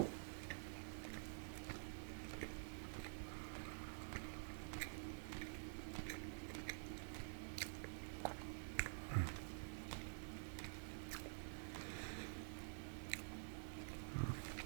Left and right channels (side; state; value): left; silent; digital silence